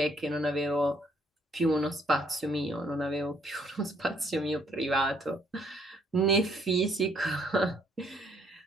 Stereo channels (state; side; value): normal; both; correlation 0.66